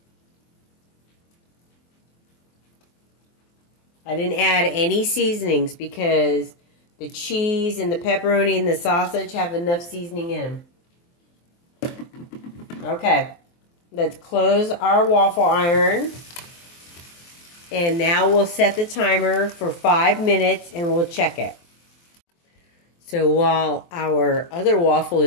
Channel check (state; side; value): late; right; 23 ms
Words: I didn't add any seasonings because the cheese and the pepperoni and the sausage have enough seasoning in them. Okay, let's close our waffle iron. And now we'll set the timer for 5 minutes and we'll check it. So while our other waffle